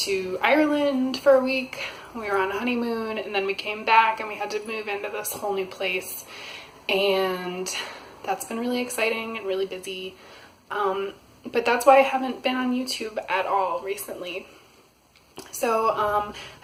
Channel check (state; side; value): identical; both; correlation 1.00